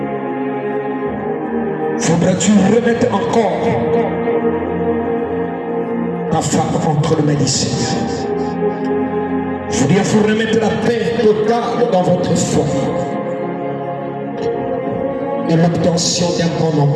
Faudra-tu remettre encore ta femme entre les mains du Seigneur. Il faut remettre la paix totale dans votre foyer et l'obtention d'un bon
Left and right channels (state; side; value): identical; both; correlation 1.00